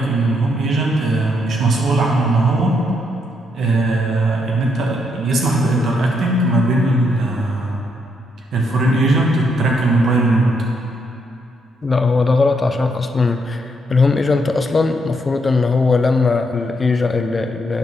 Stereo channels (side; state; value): both; normal; correlation 0.76